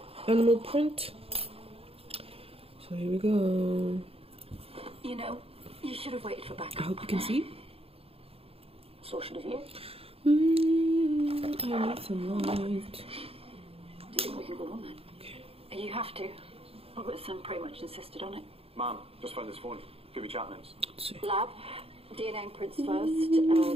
animal print. So here we go. You know, you should have waited for I backup. hope you can see. So should have you. I need some light. Do you think we can go on then? You have to. Robert's son pretty much insisted on it. Ma'am, just found this phone. Give me chat names. Let's see. Lab, DNA prints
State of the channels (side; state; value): left; late; 0.28 ms